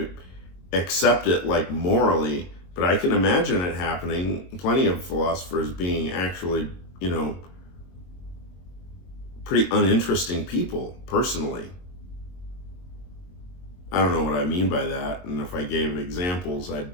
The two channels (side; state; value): right; late; 22 ms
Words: accept it morally, but I can imagine it happening. Plenty of philosophers being actually, pretty uninteresting people, personally. I don't know what I mean by that, and if I gave examples, I'd